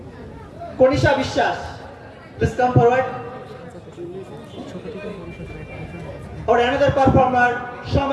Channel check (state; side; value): identical; both; correlation 1.00